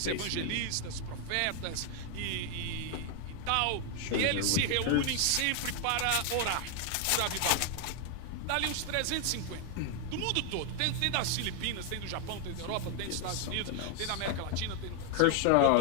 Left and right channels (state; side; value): different; both; correlation 0.00